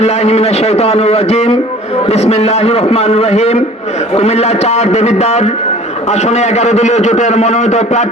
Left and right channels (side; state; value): both; normal; correlation 0.47